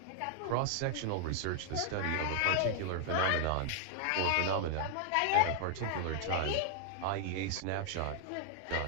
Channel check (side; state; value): both; different; correlation 0.00